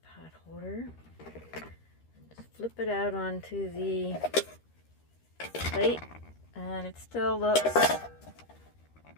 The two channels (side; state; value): right; late; 13 ms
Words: pot holder and just flip it out onto the plate, and it still looks